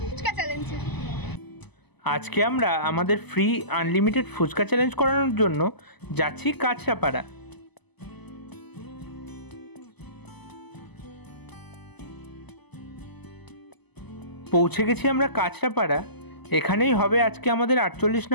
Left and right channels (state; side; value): late; right; 0.99 ms